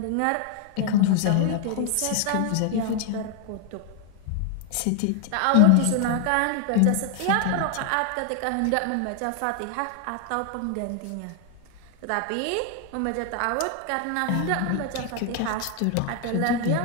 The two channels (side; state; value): both; different; correlation 0.00